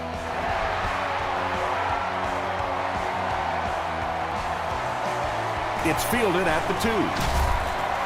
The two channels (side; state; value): both; identical; correlation 1.00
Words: It's fielded at the